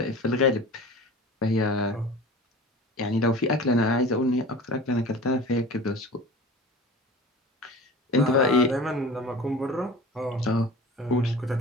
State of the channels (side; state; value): both; normal; correlation 0.38